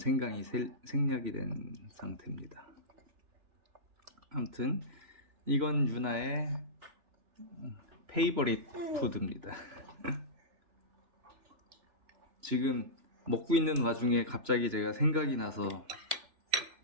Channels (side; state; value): left; late; 3.4 ms